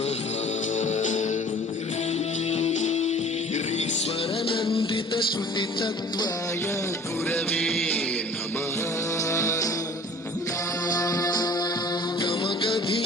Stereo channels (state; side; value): normal; both; correlation 0.47